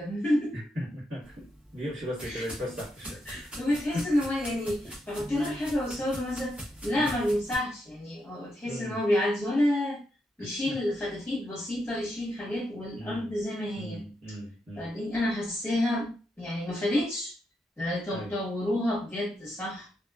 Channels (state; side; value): normal; both; correlation 0.82